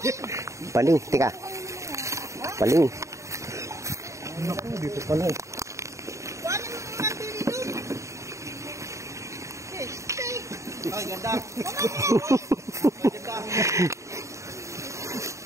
paling, tika. Paling. Naku, dito pala eh. Ay, ganda.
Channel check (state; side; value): late; left; 0.15 ms